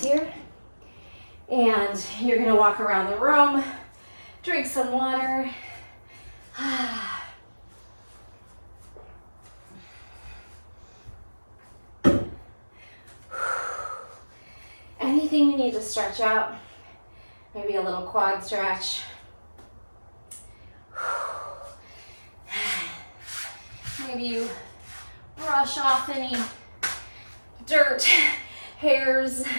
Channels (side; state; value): both; inverted; correlation -1.00